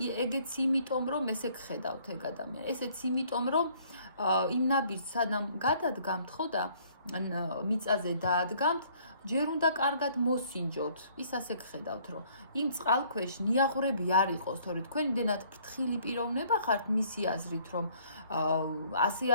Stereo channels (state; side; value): inverted; both; correlation -0.60